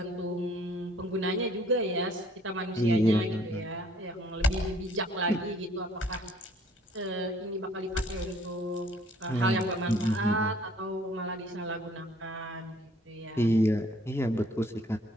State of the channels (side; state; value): both; normal; correlation 0.58